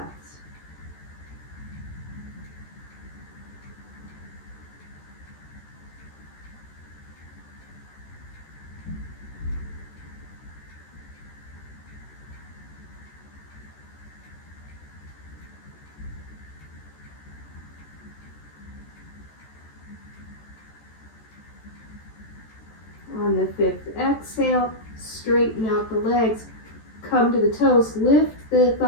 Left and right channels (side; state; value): right; late; 14 ms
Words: On the 5th exhale, straighten out the legs, come to the toes, lift the